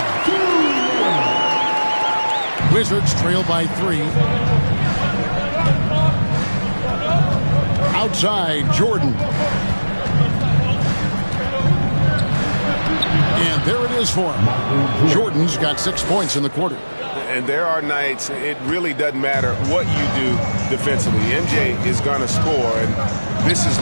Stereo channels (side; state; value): both; inverted; correlation -1.00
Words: Wizards trail by 3. Outside, Jordan. And there it is for him. Jordan's got 6 points in the quarter. And there are nights it really doesn't matter what you do defensively. MJ is going to score, and this is